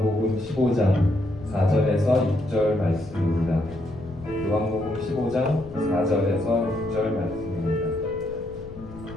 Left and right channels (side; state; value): left; noise; rumble, 16 dB below the sound